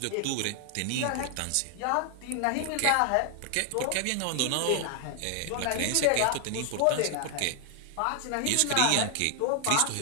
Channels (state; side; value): different; both; correlation 0.00